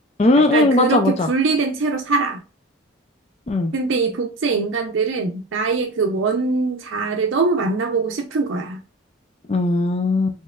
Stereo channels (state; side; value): normal; both; correlation 0.32